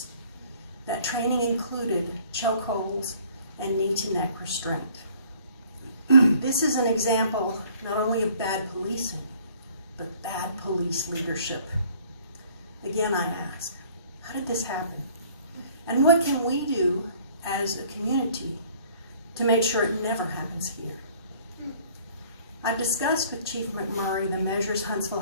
That training included chokeholds and knee-to-neck restraint. This is an example not only of bad policing, but bad police leadership. Again, I ask, how did this happen? And what can we do as a community to make sure it never happens here? I've discussed with Chief McMurray the measures Huntsville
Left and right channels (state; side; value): inverted; both; correlation -0.55